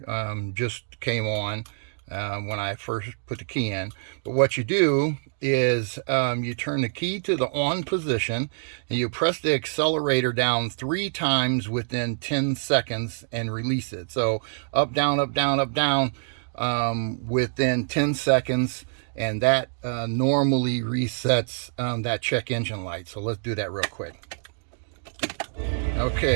just came on when I first put the key in. But what you do is you turn the key to the on position, and you press the accelerator down 3 times within 10 seconds and release it. So up, down, up, down, up, down, within 10 seconds, and that normally resets that check engine light. So let's do that real quick.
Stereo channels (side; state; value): left; silent; digital silence